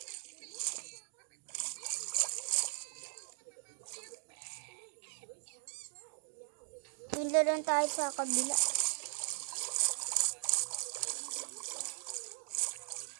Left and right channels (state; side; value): silent; left; digital silence